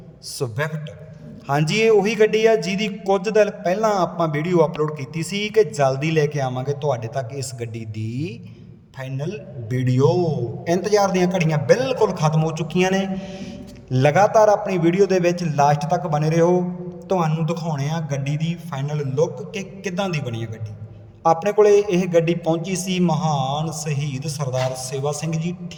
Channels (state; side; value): identical; both; correlation 1.00